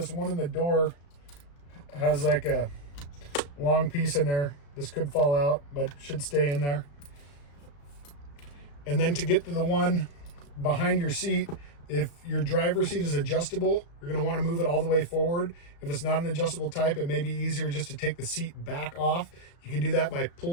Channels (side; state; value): right; late; 35 ms